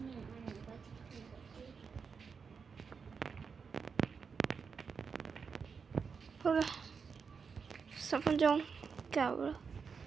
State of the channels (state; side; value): quieter; left; 5.7 dB